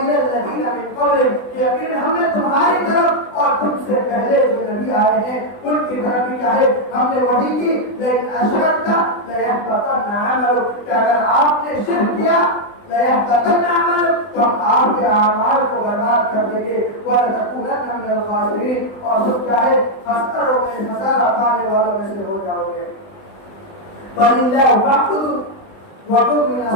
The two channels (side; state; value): right; late; 20 ms